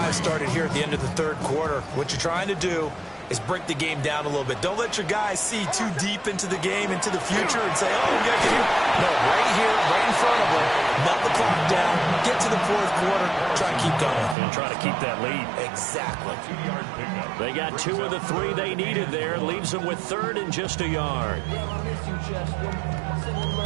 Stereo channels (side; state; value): left; drops out; at 14.4 s